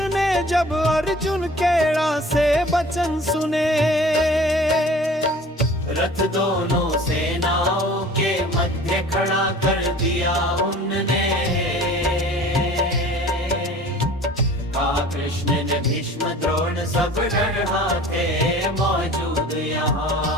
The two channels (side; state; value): both; normal; correlation 0.45